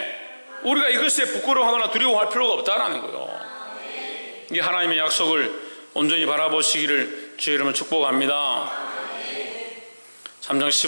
우리가 이것에 부끄러워하거나 두려워할 필요가 없다는 거예요. 이 하나님의 약속을 온전히 바라보시기를 주의 이름으로 축복합니다. 3장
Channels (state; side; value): inverted; both; correlation -1.00